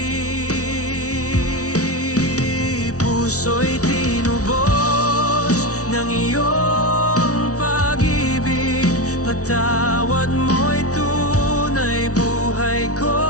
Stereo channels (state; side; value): late; right; 0.66 ms